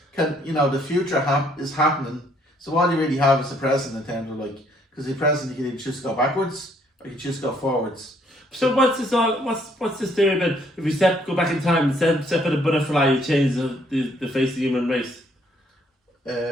the future is happening. So all you really have is the present in terms of because the present you can either choose to go backwards or you choose to go forwards. So what's this theory about if you go back in time and step in a butterfly, you change the face of the human race?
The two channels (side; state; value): both; normal; correlation 0.66